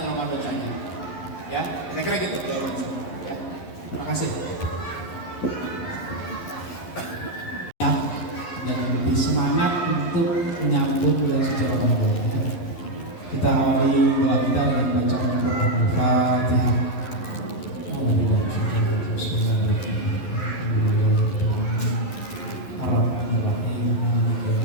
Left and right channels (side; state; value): right; late; 11 ms